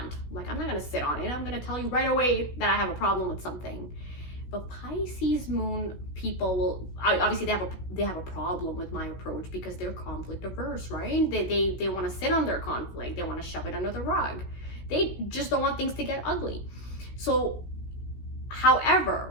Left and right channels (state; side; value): late; right; 16 ms